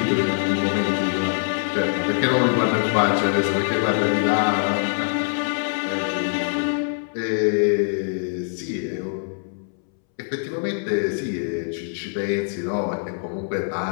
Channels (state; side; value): silent; right; 63 dB below the other